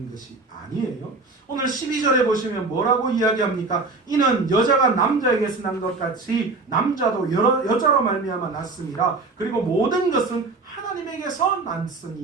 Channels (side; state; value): left; quieter; 3.7 dB